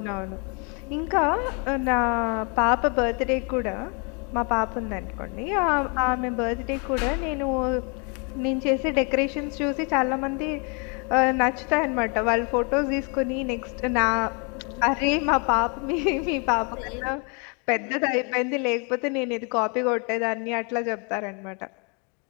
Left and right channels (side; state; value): right; quieter; 35.2 dB